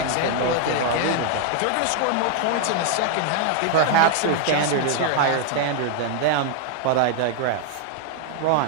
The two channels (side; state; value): both; different; correlation 0.00